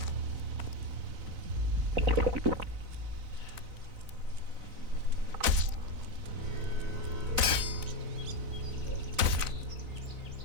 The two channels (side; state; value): left; late; 4.0 ms